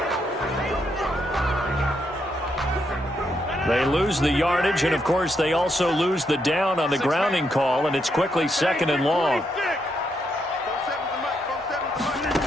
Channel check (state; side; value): normal; both; correlation 0.78